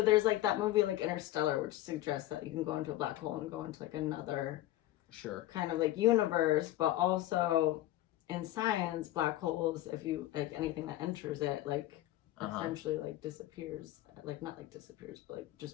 there's like that movie like Interstellar, which suggests that you can go into a black hole and go into like another kind of like universe, but also in science, black holes, if you like anything that enters it, like essentially like disappears, like not like disappears, but like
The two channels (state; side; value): quieter; right; 15.1 dB